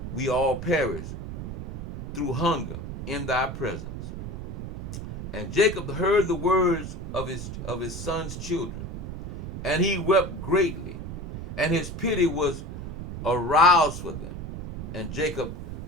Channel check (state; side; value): noise; right; rumble, 7 dB below the sound